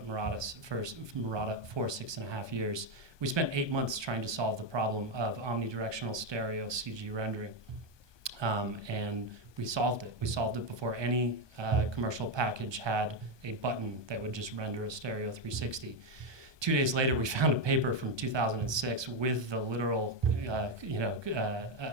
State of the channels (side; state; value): left; late; 1.2 ms